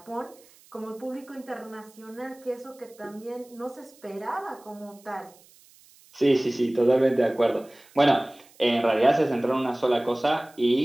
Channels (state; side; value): noise; right; hiss, 27 dB below the sound